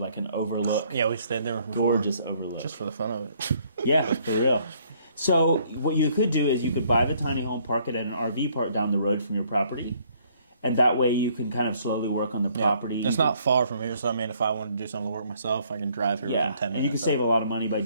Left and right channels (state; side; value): inverted; both; correlation -0.65